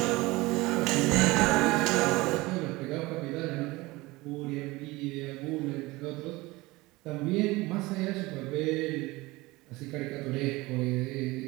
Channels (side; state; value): left; quieter; 21.3 dB